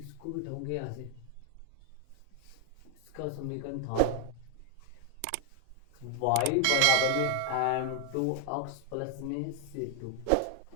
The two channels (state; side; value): different; both; correlation 0.00